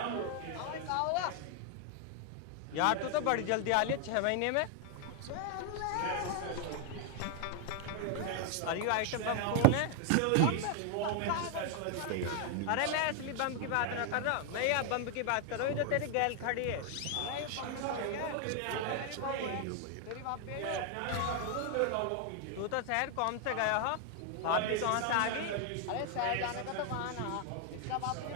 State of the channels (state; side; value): different; both; correlation 0.00